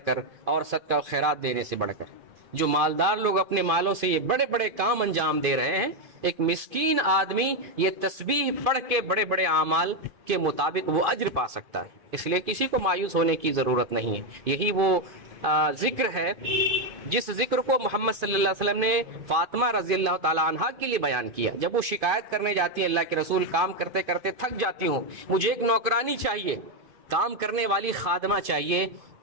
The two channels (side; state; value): left; late; 2.5 ms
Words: کر، اور صدقہ و خیرات دینے سے بڑھ کر۔ جو مالدار لوگ اپنے مالوں سے یہ بڑے بڑے کام انجام دے رہے ہیں، ایک مسکین آدمی یہ تسبیح پڑھ کے بڑے بڑے اعمال کے مطابق وہ اجر پا سکتا ہے۔ اس لیے کسی کو مایوس ہونے کی ضرورت نہیں ہے۔ یہی وہ ذکر ہے جس ذکر کو محمد صلی اللہ علیہ وسلم نے فاطمہ رضی اللہ تعالیٰ عنہا کے لیے بیان کیا۔ جب وہ شکایت کرنے جاتی ہے، اللہ کے رسول کام کرتے کرتے تھک جاتی ہوں، مجھے ایک نوکرانی چاہیے، کام کرنے والی خادمہ چاہیے،